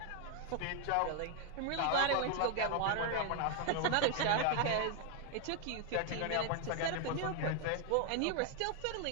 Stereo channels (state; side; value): different; both; correlation 0.00